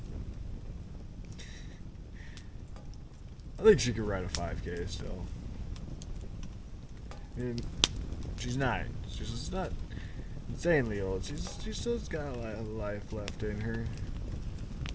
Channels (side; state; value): both; identical; correlation 1.00